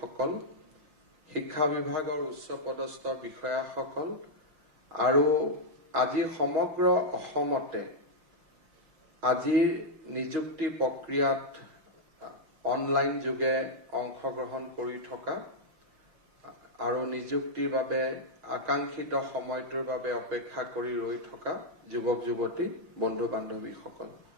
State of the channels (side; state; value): left; late; 5.8 ms